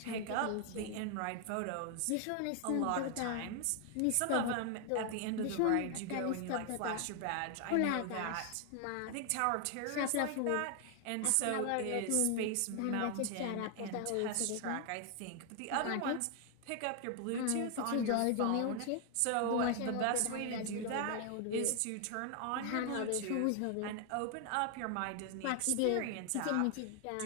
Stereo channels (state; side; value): different; both; correlation 0.00